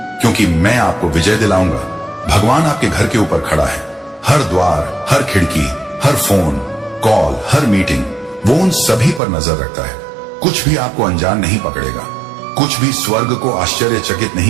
क्योंकि मैं आपको विजय दिलाऊंगा। भगवान आपके घर के ऊपर खड़ा है। हर द्वार, हर खिड़की, हर फोन कॉल, हर मीटिंग, वो उन सभी पर नजर रखता है। कुछ भी आपको अनजान नहीं पकड़ेगा, कुछ भी स्वर्ग को आश्चर्यचकित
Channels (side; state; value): left; drops out; at 9.2 s